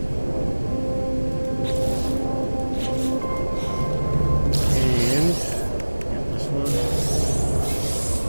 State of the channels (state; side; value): inverted; both; correlation -1.00